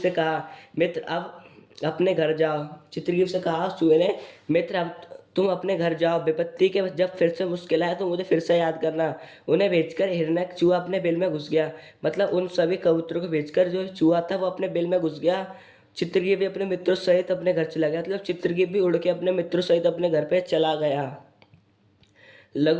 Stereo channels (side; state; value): both; identical; correlation 1.00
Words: कहा, मित्र अब अपने घर जाओ। चित्रग्रीव से कहा उस चूहे ने, मित्र अब तुम अपने घर जाओ, विपत्ति के जब फिर से मुश्किल आए तो मुझे फिर से याद करना। उन्हें भेजकर हिरण्यक चूहा अपने बिल में घुस गया। मतलब उन सभी कबूतरों को भेजकर जो चूहा था वो अपने बिल में घुस गया। चित्रगीत भी अपने मित्रों सहित अपने घर चला गया। मतलब चित्रगीत भी उड़ के अपने मित्रों सहित अपने घर पे चला गया।